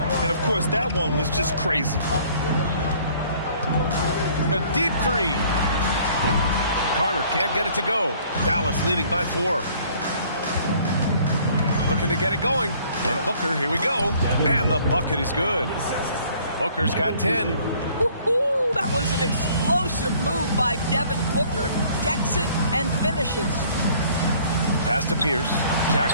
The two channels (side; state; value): both; inverted; correlation -0.57